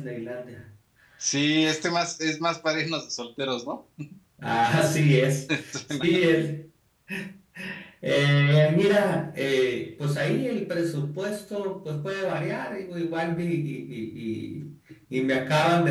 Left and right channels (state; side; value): identical; both; correlation 1.00